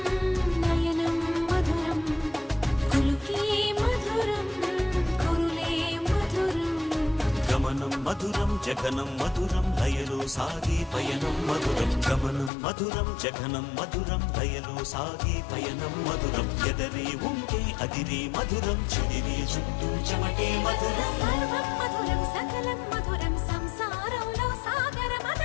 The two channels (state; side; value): drops out; right; at 12.5 s